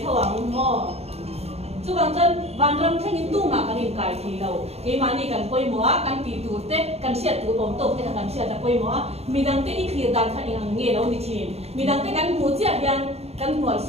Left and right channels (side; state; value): left; late; 0.30 ms